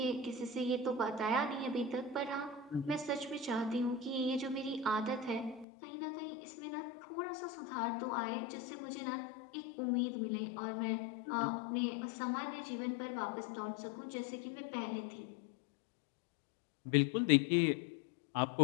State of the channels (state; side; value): drops out; right; at 5.7 s